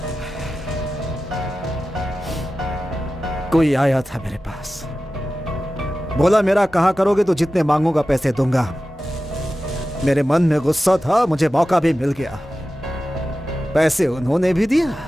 कोई आया था मेरे पास, बोला मेरा कहा करोगे तो जितने मांगूंगा पैसे दूंगा। मेरे मन में गुस्सा था, मुझे मौका भी मिल गया। पैसे उन्होंने भी दिया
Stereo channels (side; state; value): both; normal; correlation 0.94